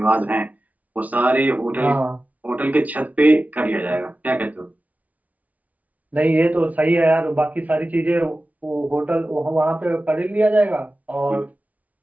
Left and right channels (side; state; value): left; late; 0.072 ms